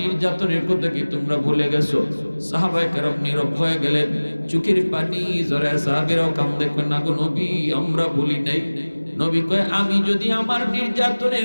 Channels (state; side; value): inverted; both; correlation -1.00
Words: কথা কি তোমরা ভুলে গেছো? সাহাবায়ে কেরাম নীরব হয়ে গেলেন, চোখের পানি জড়ায়। সাহাবীরাও কান্দে, কয় না গো নবী, আমরা ভুলি নাই। নবী কয়, আমি যদি আমার